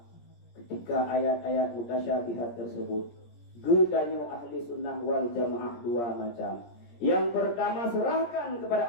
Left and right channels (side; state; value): right; late; 17 ms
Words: ketika ayat-ayat mutasyabihat tersebut, gedanyo ahli sunnah wal jamaah dua macam. Yang pertama, serahkan